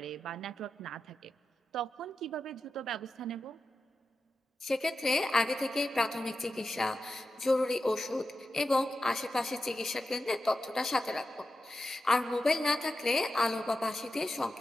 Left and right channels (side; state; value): both; normal; correlation 0.91